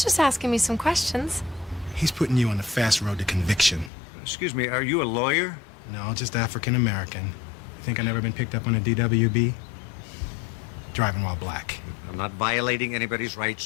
just asking me some questions. He's putting you on the fast road to conviction. Excuse me, are you a lawyer? No, just African-American. You think I never been picked up on a DWB? Driving while black. I'm not violating anybody's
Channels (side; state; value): right; drops out; at 3.9 s